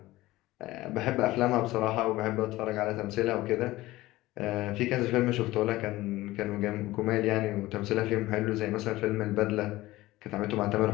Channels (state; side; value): quieter; right; 17.9 dB